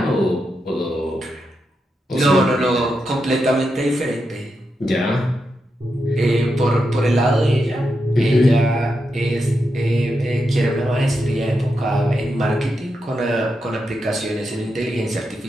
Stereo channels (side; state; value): both; normal; correlation 0.86